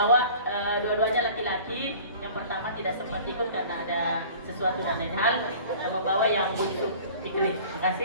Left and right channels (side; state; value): both; inverted; correlation -0.45